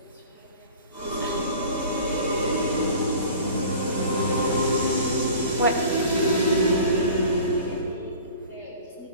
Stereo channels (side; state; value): both; inverted; correlation -0.43